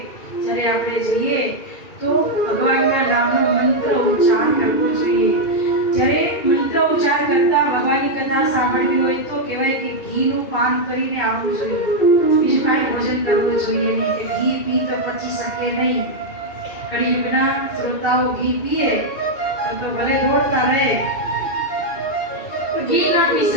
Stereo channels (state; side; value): late; right; 2.4 ms